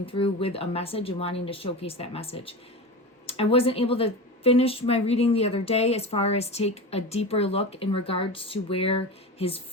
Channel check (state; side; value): normal; both; correlation 0.26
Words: through with a message and wanting to showcase that message. I wasn't able to finish my reading the other day as far as take a deeper look in regards to where his